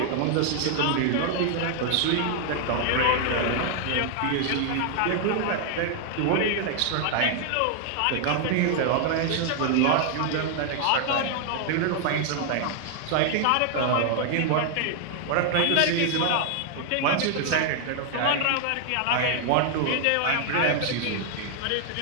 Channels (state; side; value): different; both; correlation 0.00